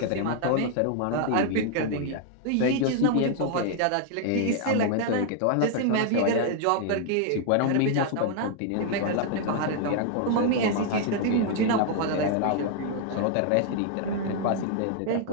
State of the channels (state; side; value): different; both; correlation 0.00